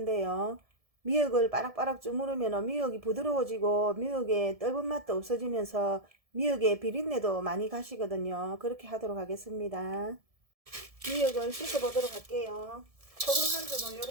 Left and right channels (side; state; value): left; late; 1.7 ms